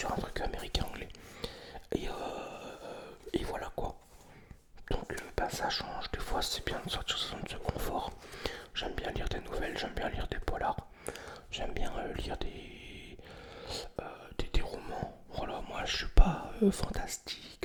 un truc américain-anglais. Et voilà quoi. Donc ça change. Des fois c'est bien de sortir de sa zone de confort. J'aime bien lire des nouvelles, j'aime bien lire des polars. J'aime bien lire des romans. Voilà, moi je suis pas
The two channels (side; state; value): both; identical; correlation 1.00